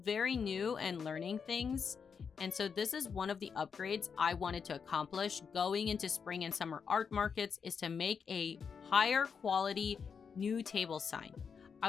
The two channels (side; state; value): right; quieter; 6.2 dB